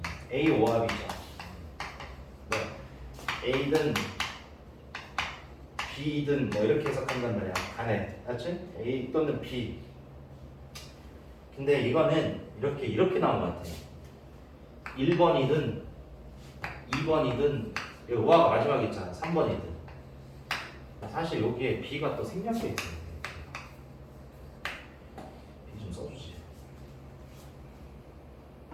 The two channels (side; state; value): both; identical; correlation 1.00